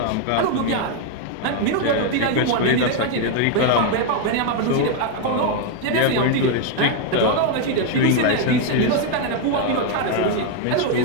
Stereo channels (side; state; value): both; different; correlation 0.01